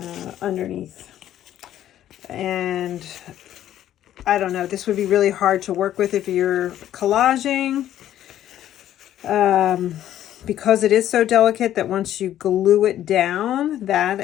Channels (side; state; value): right; quieter; 11.9 dB